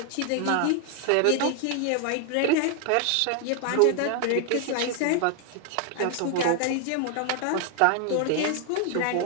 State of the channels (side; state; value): both; different; correlation 0.00